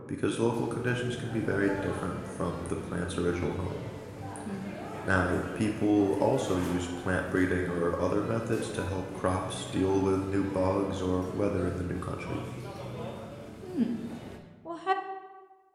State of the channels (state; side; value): identical; both; correlation 1.00